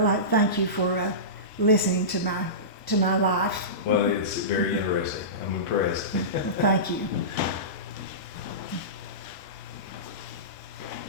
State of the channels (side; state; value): right; late; 5.2 ms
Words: I thank you for listening to my life. Well, it's very interesting. I'm impressed. Well, thank you.